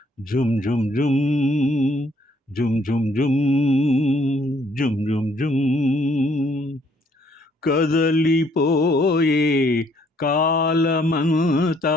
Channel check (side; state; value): both; normal; correlation 0.66